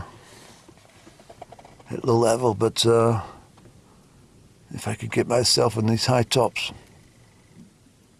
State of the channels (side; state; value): both; identical; correlation 1.00